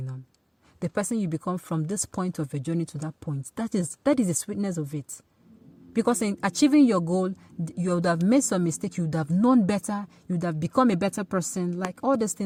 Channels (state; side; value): identical; both; correlation 1.00